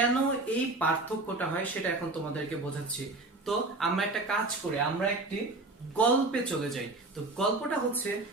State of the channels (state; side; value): quieter; left; 3.1 dB